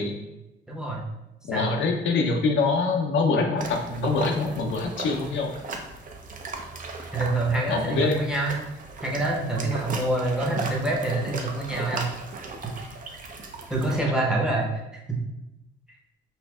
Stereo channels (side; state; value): both; normal; correlation 0.46